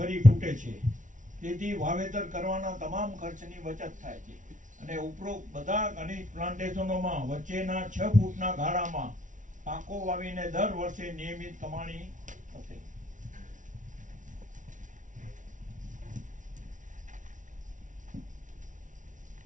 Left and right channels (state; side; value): late; left; 0.37 ms